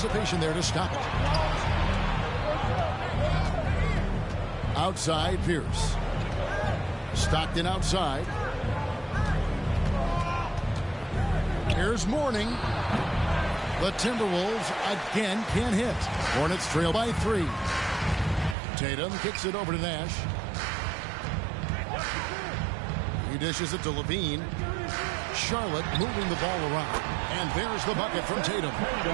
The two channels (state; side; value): drops out; left; at 18.6 s